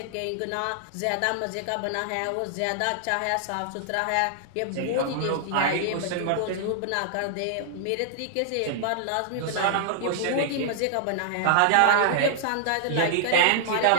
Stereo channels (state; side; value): different; both; correlation -0.01